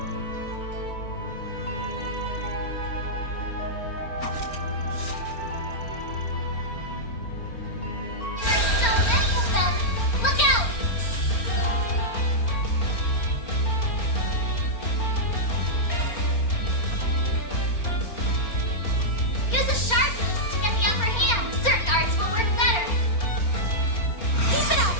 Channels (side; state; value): right; late; 4.4 ms